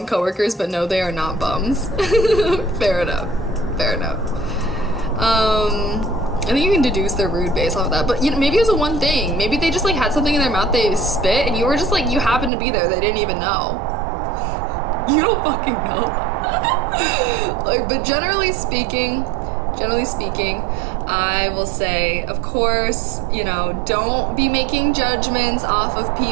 coworkers, but no, they are not bums. Fair enough. I think you can deduce they're rude based off of that, but, you know, maybe it was a one thing. Maybe they just, like, had something in their mouth, they spit, and you were just like, you happened to be there, they didn't even know. You don't fucking know. Like, but generally speaking, I will say, of course, you know, don't be making judgments off of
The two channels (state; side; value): drops out; left; at 12.5 s